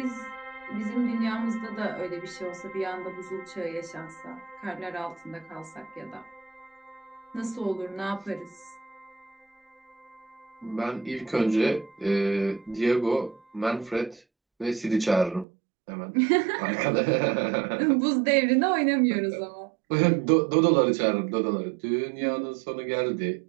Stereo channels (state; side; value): drops out; left; at 15.5 s